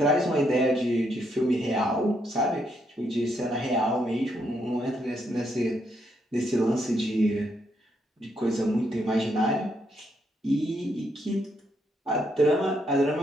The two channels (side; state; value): both; normal; correlation 0.76